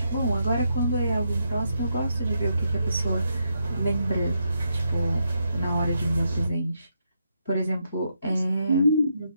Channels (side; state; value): both; inverted; correlation -0.80